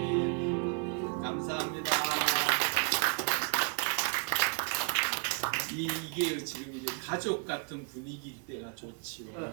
감사합니다. 이게 지금 이제 가족 같은 분위기일 때가 좋지요.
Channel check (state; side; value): quieter; left; 38.5 dB